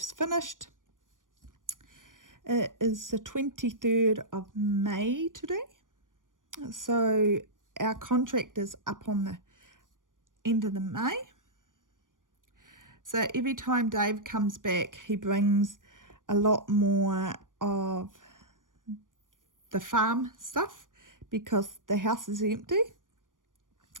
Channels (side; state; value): left; late; 0.88 ms